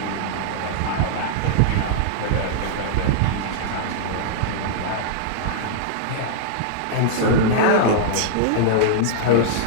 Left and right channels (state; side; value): different; both; correlation -0.01